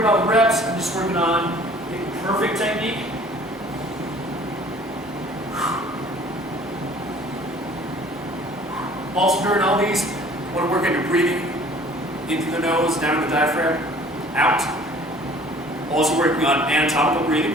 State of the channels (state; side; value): normal; both; correlation 0.51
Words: reps, I'm just working on getting perfect technique. Also during all these, you want to work on your breathing in through the nose, down to the diaphragm, out. Also working on anatomical